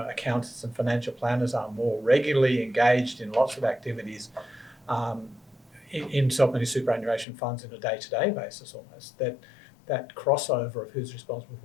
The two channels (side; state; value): right; drops out; at 7.2 s